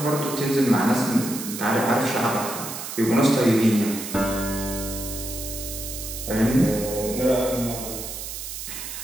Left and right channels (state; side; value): noise; right; hiss, 8 dB below the sound